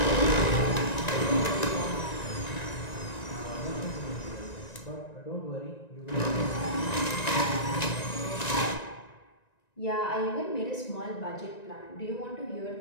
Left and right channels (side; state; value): right; late; 1.9 ms